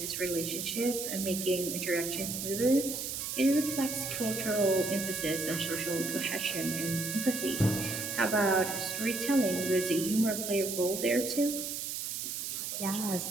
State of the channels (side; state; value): right; noise; hiss, 4 dB below the sound